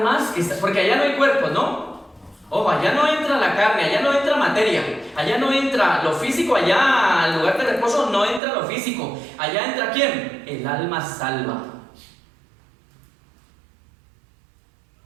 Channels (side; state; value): left; drops out; at 8.4 s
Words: porque allá no hay cuerpos, ¿no? Ojo, allá no entra la carne, allá no entra materia, allá no entra lo físico, allá al lugar de reposo no entra lo físico. Allá entra ¿quién? El alma salva.